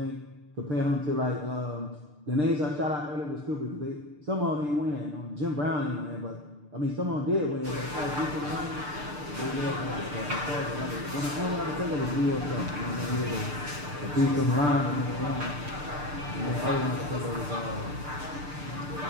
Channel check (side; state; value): left; late; 6.7 ms